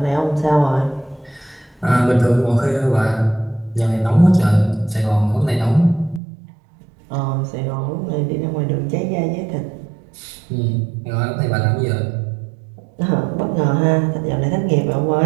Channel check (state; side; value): drops out; left; at 6.2 s